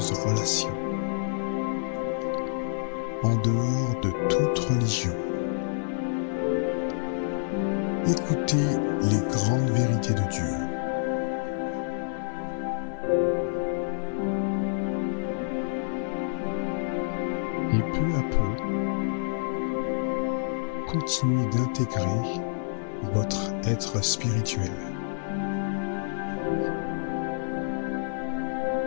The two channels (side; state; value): right; silent; digital silence